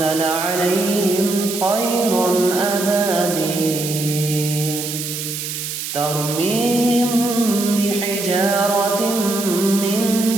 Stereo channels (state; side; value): noise; right; hiss, 5 dB below the sound